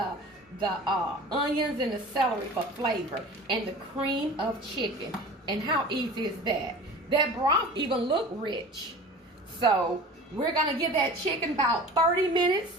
onions and the celery for flavor, and the cream of chicken. And how easy is that? That broth even look rich. So we're going to give that chicken about 30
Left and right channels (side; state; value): both; normal; correlation 0.39